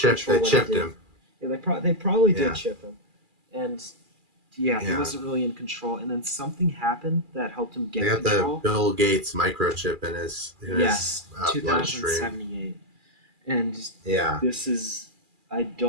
control what he did. him. Yeah, they probably did Yeah. chip him, and he Yeah. wasn't really in control. And then something happened that helped him get They got control. the Bill Gates microchip in his Yes, bloodstream. 2078, and Yeah, this is I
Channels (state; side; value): late; left; 2.4 ms